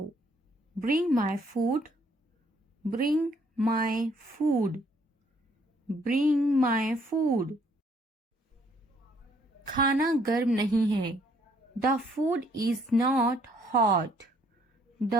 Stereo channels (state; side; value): normal; both; correlation 0.65